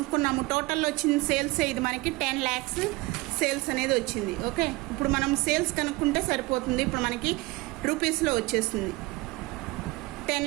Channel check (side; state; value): left; quieter; 22.2 dB